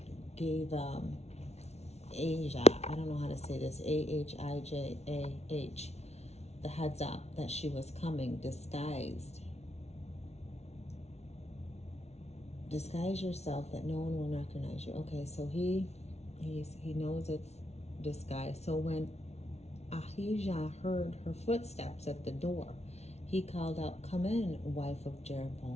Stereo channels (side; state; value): right; late; 0.31 ms